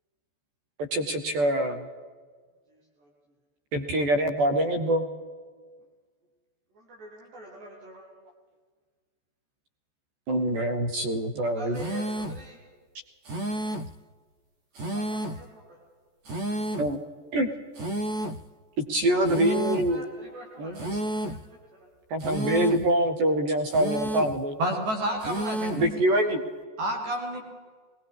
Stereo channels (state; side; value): late; left; 14 ms